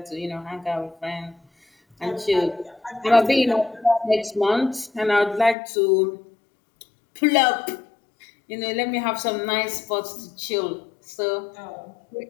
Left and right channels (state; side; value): drops out; right; at 5.6 s